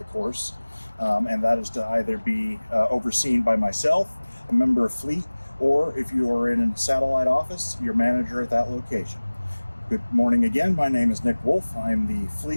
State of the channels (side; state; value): both; inverted; correlation -1.00